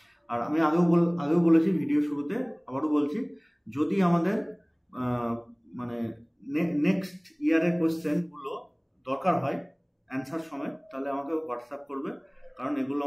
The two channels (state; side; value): identical; both; correlation 1.00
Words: আর আমি আগেও বলেছি ভিডিও শুরুতে, আবারও বলছি, যদি আমাদের মানে নেক্সট ইয়ারের কোশ্চেনগুলো দরকার হয় অ্যান্সার সময়, তাহলে আমাকে হোয়াটসঅ্যাপ করবে, কারণ এগুলো